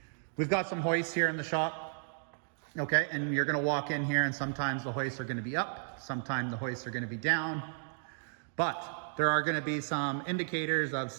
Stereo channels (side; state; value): left; silent; digital silence